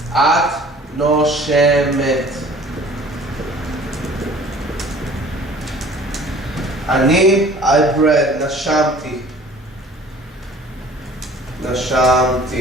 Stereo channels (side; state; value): both; normal; correlation 0.49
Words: את נושמת. אני, I breathe, נשמתי.